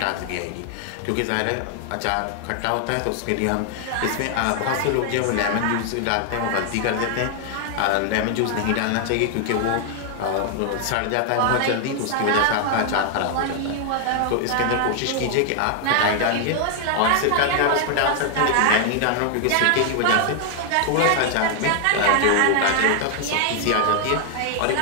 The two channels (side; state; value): both; different; correlation 0.00